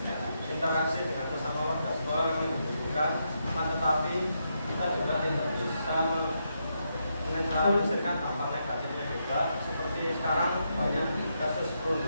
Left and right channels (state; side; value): inverted; both; correlation -0.81